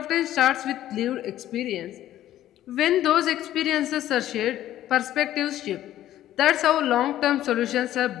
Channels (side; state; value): right; quieter; 13.0 dB